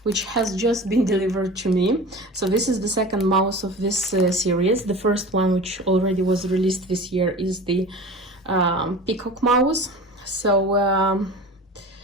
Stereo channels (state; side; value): normal; both; correlation 0.36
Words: has just been delivered to me. So this is the second mouse of this series. The first one, which already was released this year, is the peacock mouse. So